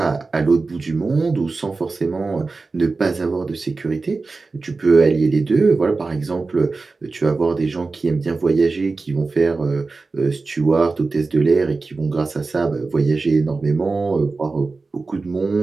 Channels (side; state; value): left; quieter; 3.9 dB